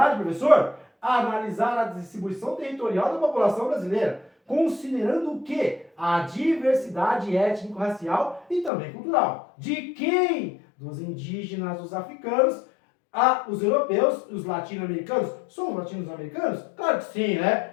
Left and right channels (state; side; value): drops out; right; at 8.7 s